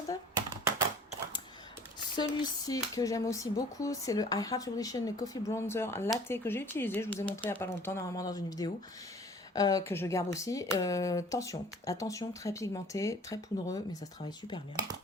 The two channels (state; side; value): normal; both; correlation 0.50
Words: Celui-ci que j'aime aussi beaucoup, c'est le I Heart Revolution, le Coffee Bronzer Latte que j'ai utilisé. Je vous ai montré il n'y a pas longtemps, normalement dans une vidéo. Que je garde aussi. Attention, très pigmenté, très poudreux, mais ça se travaille super bien.